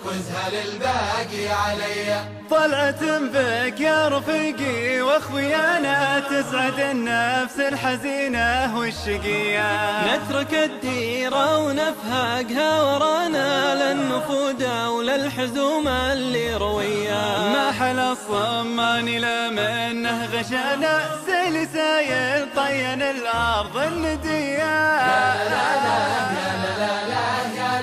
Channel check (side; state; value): both; identical; correlation 1.00